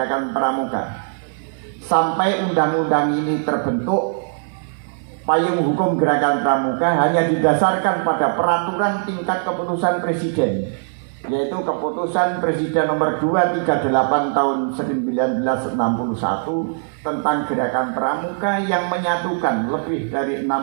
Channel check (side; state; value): left; silent; digital silence